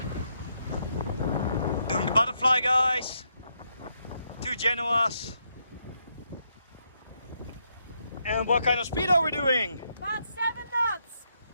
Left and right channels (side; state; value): both; inverted; correlation -0.78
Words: Doing the butterfly, guys. 2 Genoas. And what kind of speed are we doing? About 7 knots.